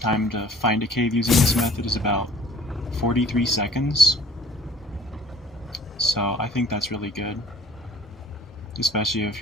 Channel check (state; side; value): normal; both; correlation 0.52